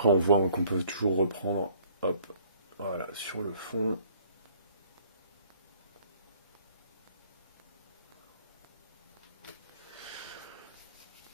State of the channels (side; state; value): both; inverted; correlation -0.58